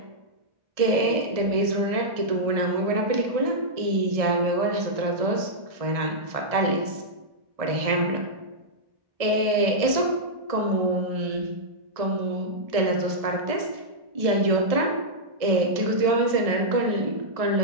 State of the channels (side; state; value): left; late; 1.6 ms